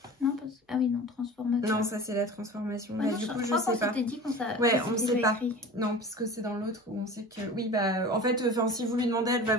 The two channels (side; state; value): both; normal; correlation 0.37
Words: Non, ah oui, non, transformation. Non, ça c'est la transformation. Bah, non, du coup, je sais pas. Dit ouais, on ne sait pas. Non, parce que c'est dans l'autre où on sait que... Oui, bah, en fait, si vous lui demandez, elle va